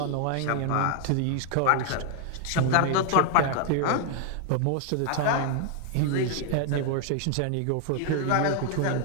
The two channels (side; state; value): both; different; correlation 0.00